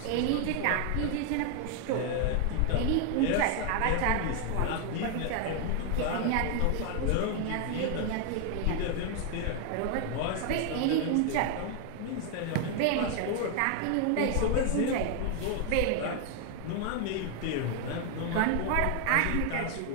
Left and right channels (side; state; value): both; different; correlation 0.00